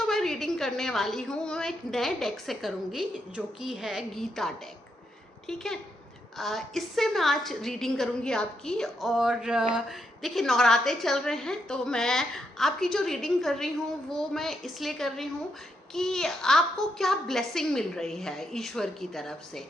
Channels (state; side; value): normal; both; correlation 0.80